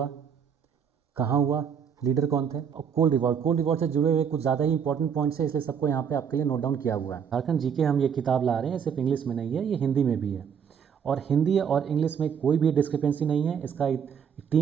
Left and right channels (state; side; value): quieter; left; 7.5 dB